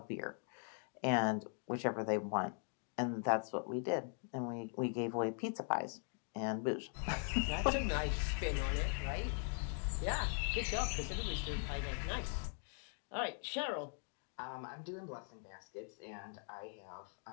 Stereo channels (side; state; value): right; silent; 51 dB below the other